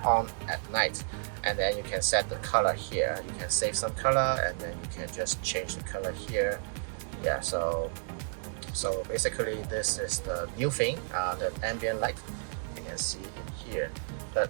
at night, and then you can set the color here. You can save some color, and then you can just change the color here. Yeah, so basically this is the new thing, the ambient light you can see in here. But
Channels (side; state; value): left; silent; digital silence